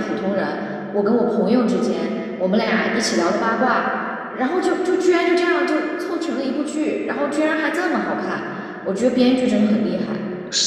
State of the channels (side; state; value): both; identical; correlation 1.00